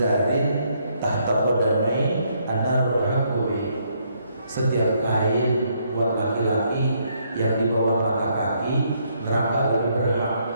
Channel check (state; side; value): inverted; both; correlation -0.72